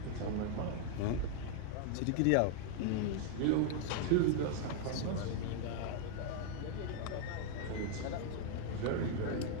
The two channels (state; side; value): different; both; correlation 0.00